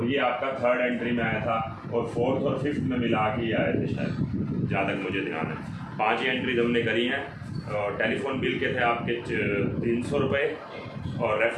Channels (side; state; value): both; identical; correlation 1.00